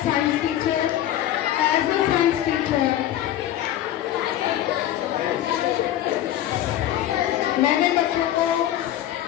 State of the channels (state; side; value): quieter; right; 12.5 dB